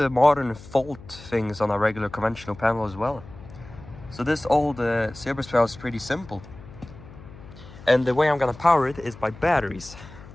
modern fault things on a regular conventional panel as well. So this old Ceabrus panel is pretty simple. And the way I'm gonna power it is by batteries.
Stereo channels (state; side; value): noise; left; hum, 18 dB below the sound